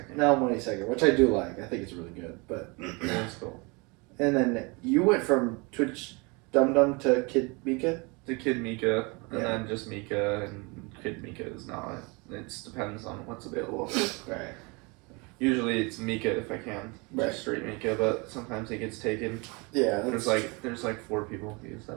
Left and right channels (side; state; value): left; quieter; 28.5 dB